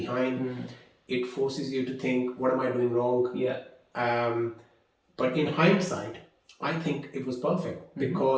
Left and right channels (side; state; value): both; identical; correlation 1.00